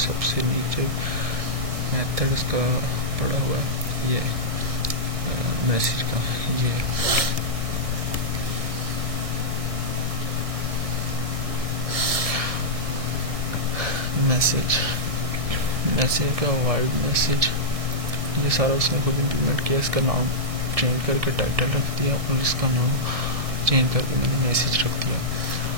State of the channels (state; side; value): late; left; 1.7 ms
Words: नीचे मेथड इसका पड़ा हुआ है ये मैसेज का, ये मैसेज का वाइड मैसेज, ये सारा उसने खुद इम्प्लीमेंट किया। इसका नाम चेंज करके टाइटल रख दिया और इसका नाम चेंज करके मैंने मैसेज रख दिया।